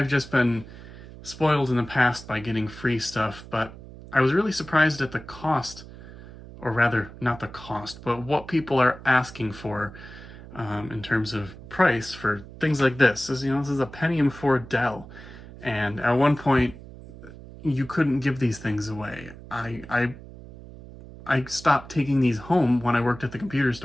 just been spoiled in the past by getting free stuff, but I was really surprised at the cost, or rather, not the cost, but what people are asking for in terms of price for things like this. This is a Pentium 4 Dell, and at one point, you couldn't give these things away. I stopped taking these home when I worked at the computer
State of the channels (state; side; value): noise; right; hum, 16 dB below the sound